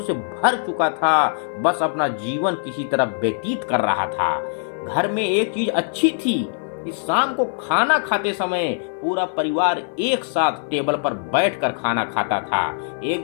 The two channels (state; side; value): silent; right; 57 dB below the other